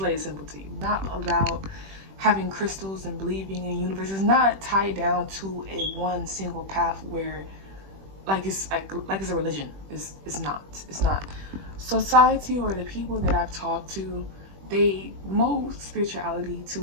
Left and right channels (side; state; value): left; late; 21 ms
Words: it simple to you. Not about having crystals and believing in the universe. It's not tied down to a one single path where like it's a religion. It's not. It's not. Society or the people that I've talked to, they mold spirituality to